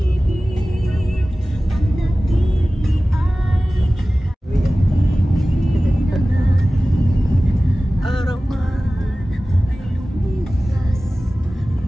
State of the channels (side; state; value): both; normal; correlation 0.97